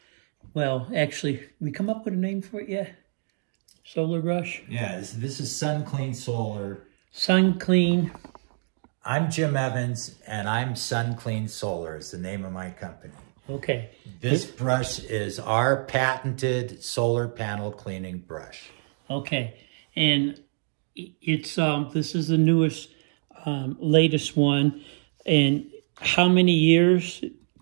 Well, actually, we come up with a name for it yet? Solar brush? Yeah, this is Sun Clean Solar. Sun Clean. I'm Jim Evans, and I'm Sun Clean Solar is the name of my company. Okay. This brush is our patented solar panel cleaning brush. Okay, and it's this is the newest, latest one. And how many years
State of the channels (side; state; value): left; silent; digital silence